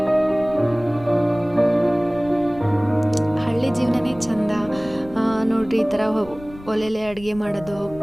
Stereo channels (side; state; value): left; noise; rumble, 18 dB below the sound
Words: ಹಳ್ಳಿ ಜೀವನನೇ ಚಂದ ನೋಡ್ರಿ. ಈ ಥರ ಒಲೆಲೆ ಅಡುಗೆ ಮಾಡೋದು,